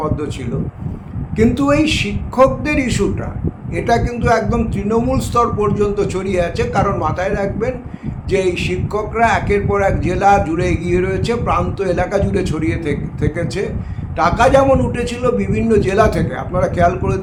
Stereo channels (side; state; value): both; identical; correlation 1.00